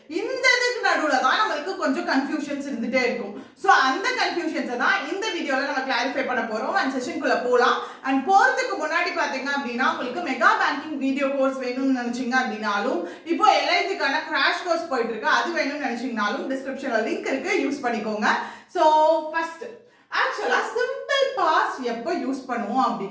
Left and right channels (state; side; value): identical; both; correlation 1.00